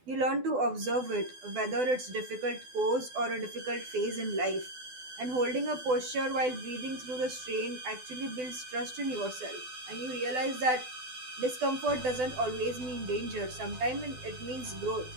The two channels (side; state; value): left; late; 12 ms